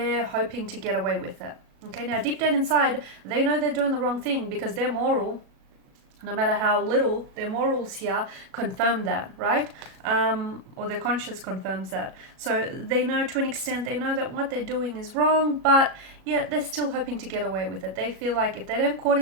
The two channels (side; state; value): left; late; 37 ms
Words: hoping to get away with it. Okay, now deep down inside, they know they're doing the wrong thing, because their moral, no matter how little, their morals here confirm that, right? Or their conscience confirms that. So they know, to an extent, they know that what they're doing is wrong, but yet they're still hoping to get away with it. They feel like if they don't caught